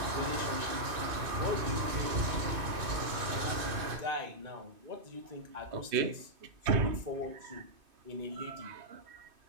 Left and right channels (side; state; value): left; late; 2.5 ms